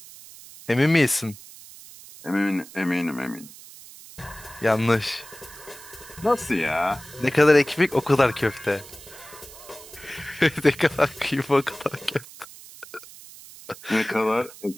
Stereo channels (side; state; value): right; noise; hiss, 18 dB below the sound